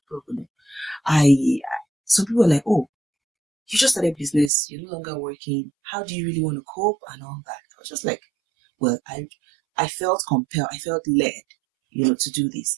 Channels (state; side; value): drops out; left; at 4.5 s